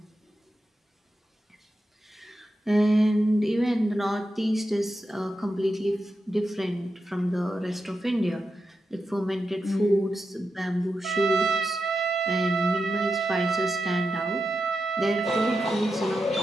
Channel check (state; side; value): normal; both; correlation 0.89